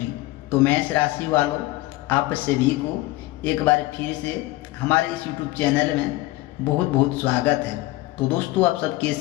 तो मेष राशि वालों, आप सभी को एक बार फिर से हमारे इस YouTube चैनल में बहुत बहुत स्वागत है। तो दोस्तों, आप सब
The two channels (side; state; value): right; quieter; 18.4 dB